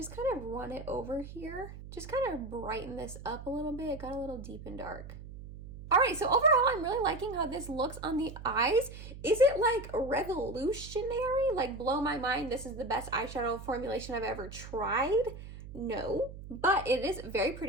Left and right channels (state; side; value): noise; right; hum, 13 dB below the sound